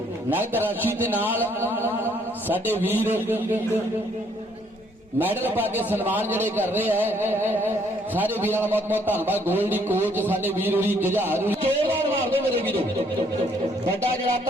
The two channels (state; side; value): normal; both; correlation 0.66